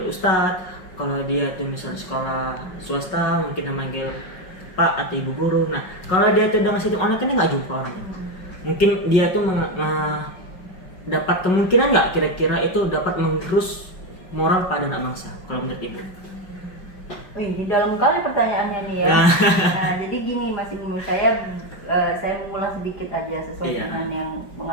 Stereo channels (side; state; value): right; late; 5.4 ms